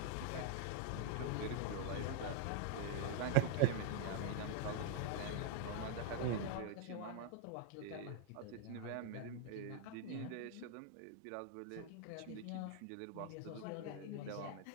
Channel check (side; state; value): both; different; correlation 0.00